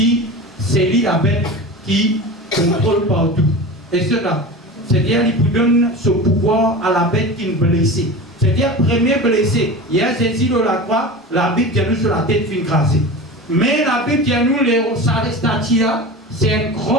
s'élient la bête, qui contrôlent partout. Et cela, c'est-à-dire qu'il vous donne ce pouvoir à la bête qui est blessée. C'est-à-dire, premier blessé, il y a Jésus de la croix, la Bible vient nous sur la tête fin crasée. Mais la Bible vient nous, ça statue là, c'est un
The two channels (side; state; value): both; normal; correlation 0.31